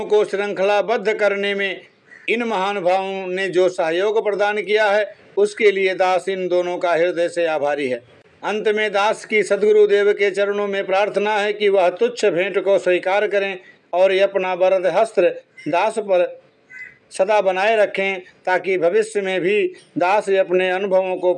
को श्रृंखलाबद्ध करने में इन महानुभावों ने जो सहयोग प्रदान किया है उसके लिए दास इन दोनों का हृदय से आभारी है। अंत में दास की सद्गुरुदेव के चरणों में प्रार्थना है कि वह तुच्छ भेंट को स्वीकार करें और अपना वरद हस्त्र दास पर सदा बनाए रखें, ताकि भविष्य में भी दास अपने अनुभवों को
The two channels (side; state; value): both; identical; correlation 1.00